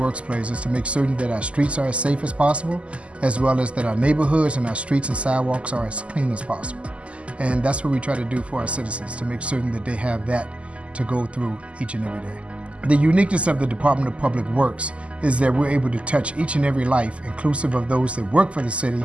plays is to make certain that our streets are as safe as possible, as well as that our neighborhoods and our streets and sidewalks are as clean as possible. And that's what we try to do for our citizens, to make certain that they have that to go through each and every day. The uniqueness of the Department of Public Works is that we're able to touch each and every life, inclusive of those that work for the city,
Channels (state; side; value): late; left; 0.058 ms